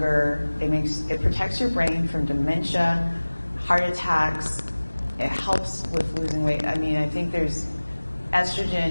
it protects your brain from dementia, heart attacks, it helps with losing weight. I mean, I think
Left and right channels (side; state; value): both; inverted; correlation -1.00